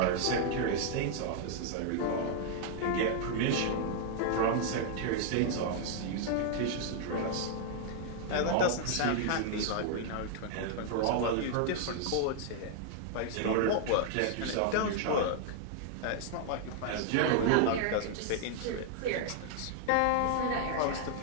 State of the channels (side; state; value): both; different; correlation -0.01